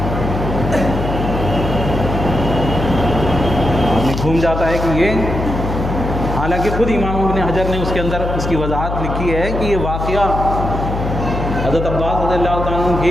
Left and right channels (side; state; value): left; noise; hum, 4 dB below the sound